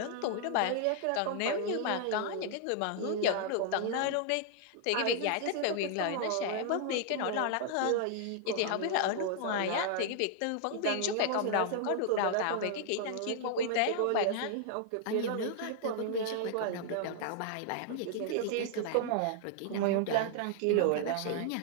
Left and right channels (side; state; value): both; different; correlation 0.00